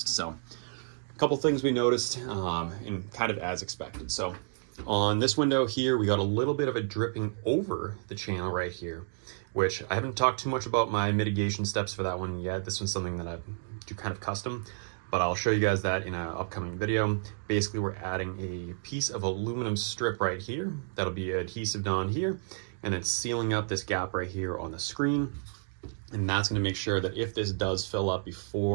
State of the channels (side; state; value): left; silent; digital silence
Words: So a couple things we noticed, and kind of as expected. So on this window here, we got a little bit of a dripping over the channel right here, which I haven't talked too much about my mitigation steps for that one yet. This one's something that I do kind of custom, but I'll show you guys that in an upcoming video. Basically, we're adding a piece of aluminum strip right here that'll be adhesive on here, and then sealing up this gap right here on the screen. And that's gonna make sure that if this does fill up